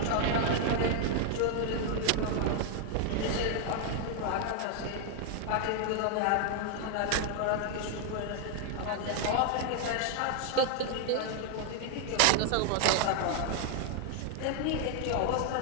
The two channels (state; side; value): different; both; correlation 0.00